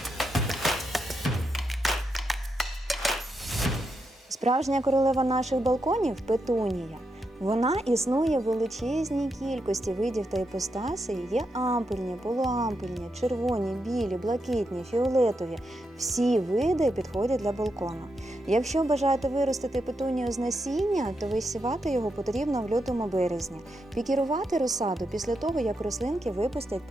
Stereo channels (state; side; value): normal; both; correlation 0.84